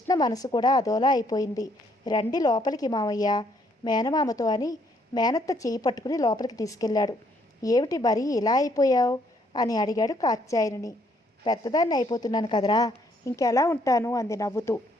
మనసు కూడా అదోలా అయిపోయింది. రండి లోపలికి మామయ్య మేనమామతో అని మేనత్త చేయి పట్టుకుని లోపలికి తీసుకెళ్ళాడు. ఏమిటి మరీ ఇలా అయిపోయావు అని అడిగాడు కాత్యాయనిని. పెద్దదాన్ని అయిపోతున్నాను కదరా, ఇంకెలా ఉంటాను అంది నవ్వుతూ.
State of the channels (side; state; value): both; normal; correlation 0.69